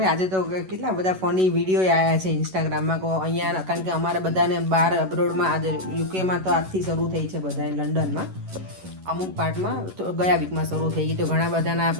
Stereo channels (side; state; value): left; late; 11 ms